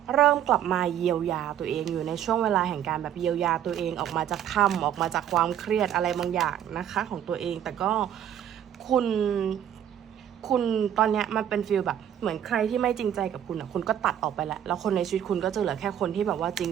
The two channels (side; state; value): left; quieter; 10.2 dB